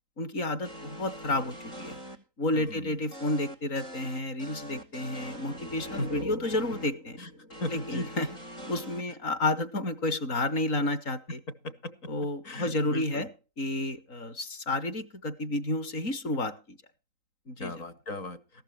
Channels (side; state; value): right; late; 3.9 ms